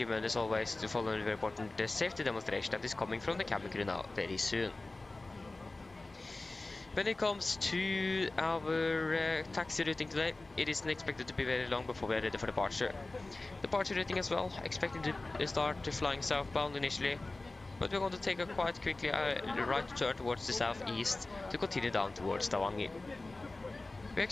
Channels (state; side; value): quieter; right; 3.1 dB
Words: as always to follow the very important safety demonstration that is coming from the cabin crew now very soon. When it comes to our taxi routing today, it isn't expected to be very long before we are ready for departure. Departure routing as well, expected to start flying southbound initially, but we're going to take a quite quickly right turn towards the southeast to continue down towards Stavanger. We're